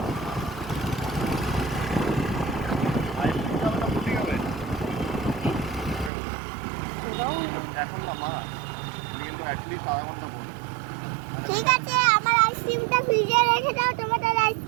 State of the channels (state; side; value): drops out; left; at 6.1 s